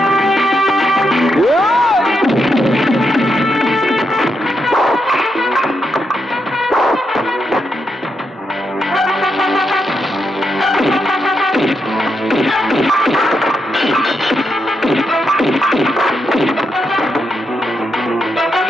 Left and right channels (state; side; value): normal; both; correlation 0.82